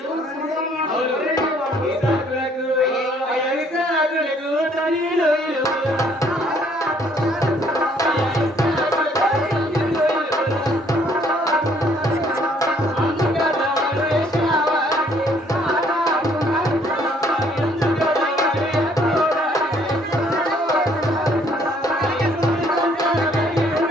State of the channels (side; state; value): both; normal; correlation 0.63